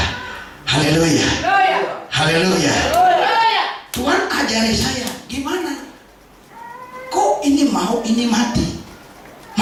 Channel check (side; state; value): both; identical; correlation 1.00